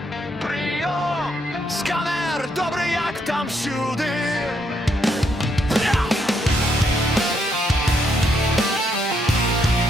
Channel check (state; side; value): normal; both; correlation 0.75